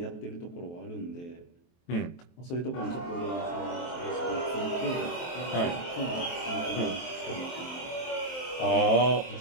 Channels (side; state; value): right; late; 23 ms